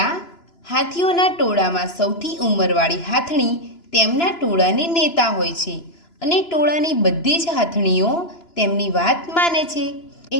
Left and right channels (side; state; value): right; late; 2.9 ms